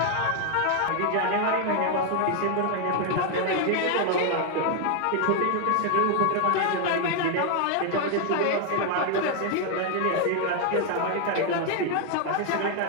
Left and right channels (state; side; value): different; both; correlation 0.00